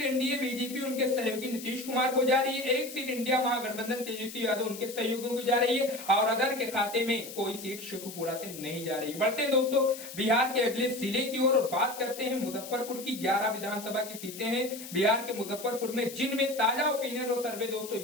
एनडीए बीजेपी उनके सहयोगी नीतीश कुमार को जा रही है। 1 सीट इंडिया महागठबंधन तेजस्वी यादव उनके सहयोगियों को जा रही है और अदर के खाते में कोई सीट शेखोपुरा से नहीं जा रही। बढ़ते हैं दोस्तों बिहार के अगले जिले की ओर और बात करते हैं मुजफ्फरपुर की। 11 विधानसभा की सीटें हैं बिहार के मुजफ्फरपुर में, जिनमें ताजा ओपिनियन और सर्वे दोस्तों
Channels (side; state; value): left; noise; hiss, 12 dB below the sound